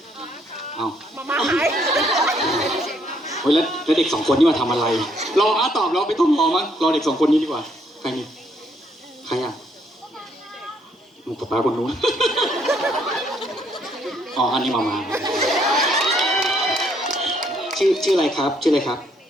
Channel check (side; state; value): both; normal; correlation 0.69